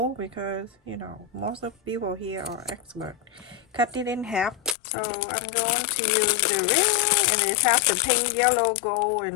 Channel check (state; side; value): drops out; right; at 4.8 s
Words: because, you know, most of people here are expert. Cut it in half. So I'm going to use the ring, and it has the pink, yellow, gold,